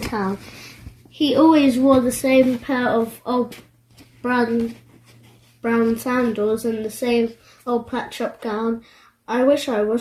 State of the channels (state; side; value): identical; both; correlation 1.00